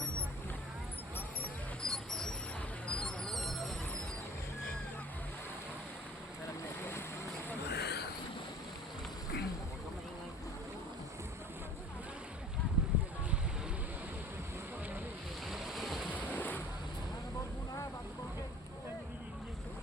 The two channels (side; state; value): both; normal; correlation 0.45